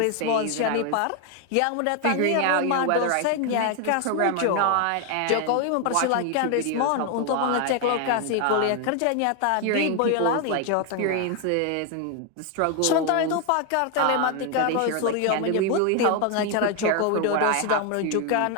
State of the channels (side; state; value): both; different; correlation 0.01